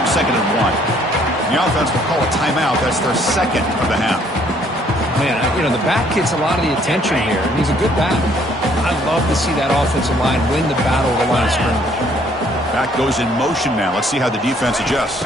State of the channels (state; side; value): normal; both; correlation 0.63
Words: 2nd and 1. The offense will call a timeout. That's their second of the half. Man, you know, the back gets a lot of the attention here. He's a good back. I love to see that offensive line win the battle of the line of scrimmage. Back goes in motion now. Let's see how the defense adjusts.